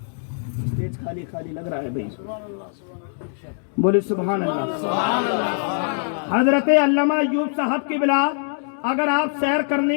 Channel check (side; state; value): right; silent; digital silence